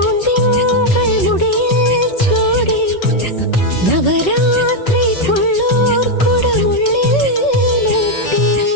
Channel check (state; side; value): late; right; 5.4 ms